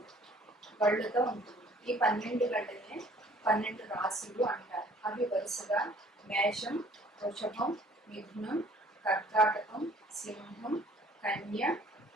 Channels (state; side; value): normal; both; correlation 0.55